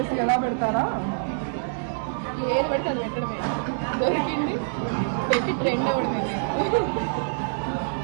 ఎలా పెడతారా? ఏది పడితే అది పెట్టడమే. దొరికింది పెట్టి ట్రెండ్ అవ్వడమే.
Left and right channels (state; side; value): silent; left; digital silence